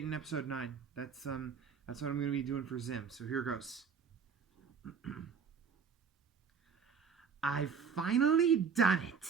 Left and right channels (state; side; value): quieter; left; 6.3 dB